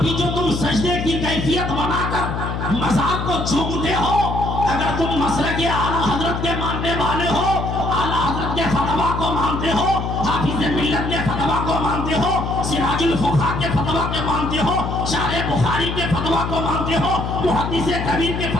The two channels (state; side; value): noise; left; hum, 3 dB below the sound